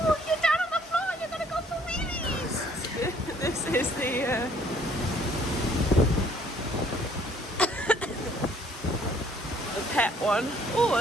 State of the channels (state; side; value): normal; both; correlation 0.61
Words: you're down on the floor, you're gonna go for wheelies! This is the pet one. Oh,